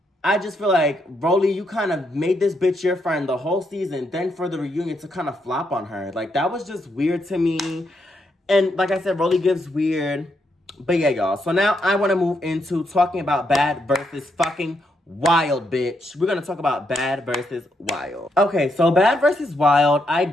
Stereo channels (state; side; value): normal; both; correlation 0.78